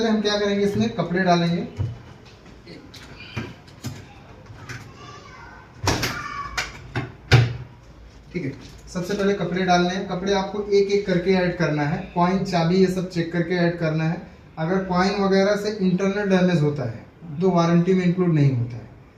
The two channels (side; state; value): both; identical; correlation 1.00